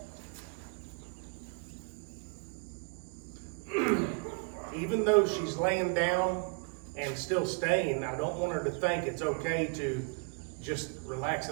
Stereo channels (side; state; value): left; quieter; 39.3 dB